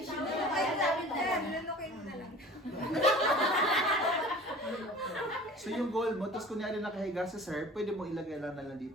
So yung goal mo, tapos kunyari nakahiga sa sir, pwede mo ilagay lang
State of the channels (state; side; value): normal; both; correlation 0.43